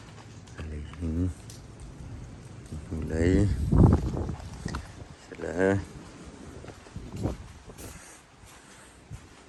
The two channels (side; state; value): both; identical; correlation 1.00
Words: lấy sẽ là